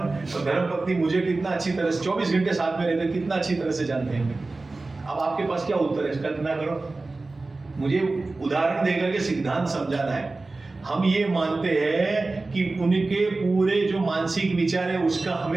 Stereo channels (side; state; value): left; quieter; 3.4 dB